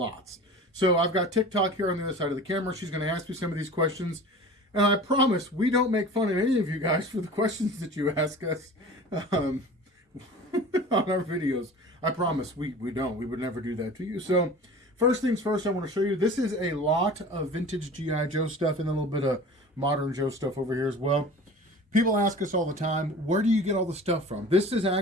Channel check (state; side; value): normal; both; correlation 0.39